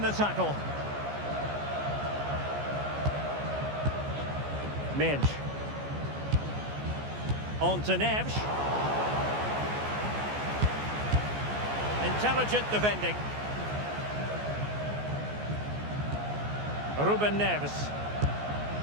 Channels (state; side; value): late; left; 14 ms